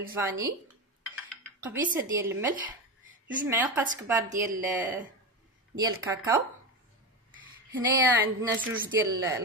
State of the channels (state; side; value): normal; both; correlation 0.18